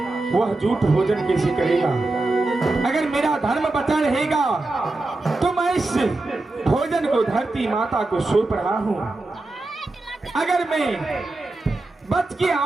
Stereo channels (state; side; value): quieter; left; 3.0 dB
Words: वह झूठ भोजन कैसे करेगा? अगर मेरा धर्म बचा रहेगा तो मैं इस भोजन को धरती माता को सौंप रहा हूँ। अगर मैं बच के